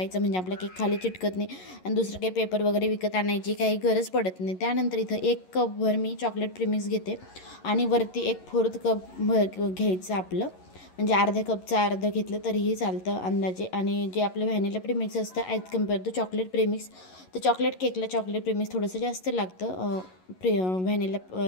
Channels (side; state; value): right; late; 11 ms